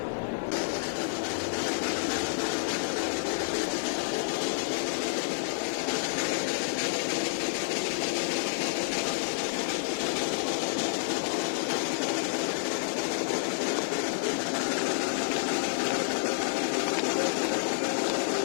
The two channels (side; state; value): right; silent; digital silence